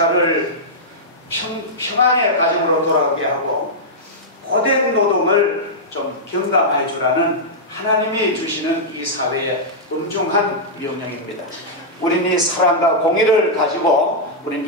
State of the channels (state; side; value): normal; both; correlation -0.09